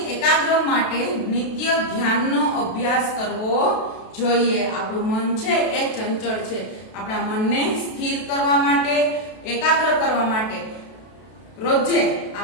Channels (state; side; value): late; right; 32 ms